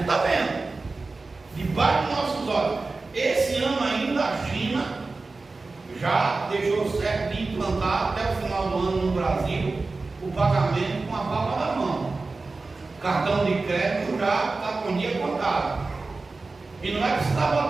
está vendo. Debaixo dos nossos olhos. Esse ano ainda a China já deixou certo de implantar até o final do ano no Brasil o pagamento com a palma da mão. Cartão de crédito já está com dia contado. E não é precisar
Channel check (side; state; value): left; quieter; 3.7 dB